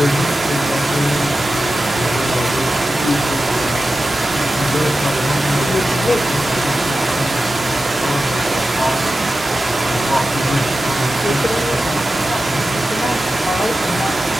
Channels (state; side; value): normal; both; correlation 0.93